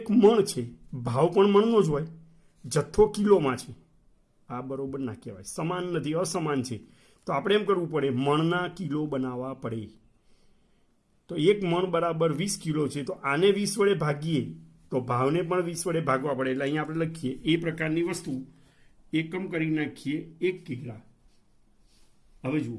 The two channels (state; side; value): identical; both; correlation 1.00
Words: મણ છે, ભાવ પણ મણનો જ હોય, જથ્થો કિલોમાં છે. આ બરોબર ના કહેવાય, સમાન નથી, અસમાન છે. તો આપણે એમ કરવું પડે, મણના કિલો બનાવવા પડે. તો 1 મણ બરાબર 20 કિલો છે, તો આને 20 વડે ભાગીએ તો ભાવને પણ 20 વડે ભાગવા પડે. એટલે અહીંયા આપણે લખીએ એ પ્રકારની વસ્તુ એકમ કરી નાખીએ 1 કિગ્રા. હવે જુઓ